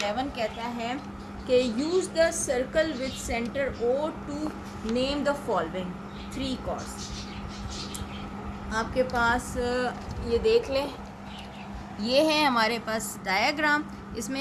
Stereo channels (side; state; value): both; identical; correlation 1.00